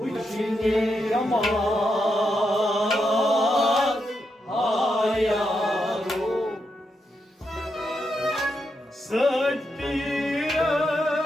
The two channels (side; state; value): both; normal; correlation 0.83